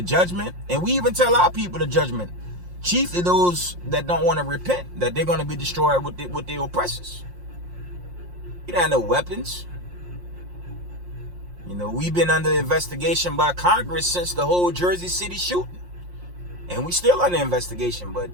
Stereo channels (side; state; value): left; late; 5.6 ms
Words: judgment, and we even tell our people the judgment, chiefly those that don't want to repent, that they're going to be destroyed with their oppressors. You don't have no weapons. You know, we've been under investigation by Congress since the whole Jersey City shooting, and we still under investigation. But